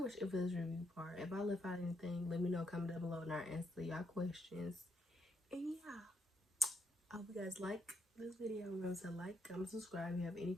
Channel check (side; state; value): both; normal; correlation 0.77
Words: it for this review part. If I left out anything, let me know, comment down below, and I'll answer y'all questions. And yeah, I hope you guys like this video. Remember to like, comment, subscribe. If you have any